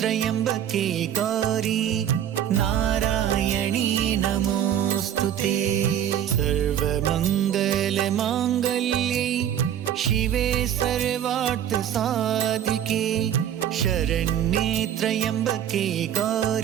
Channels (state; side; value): quieter; left; 10.2 dB